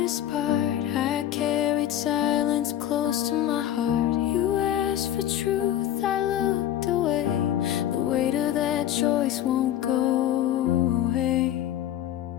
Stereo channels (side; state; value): right; quieter; 11.6 dB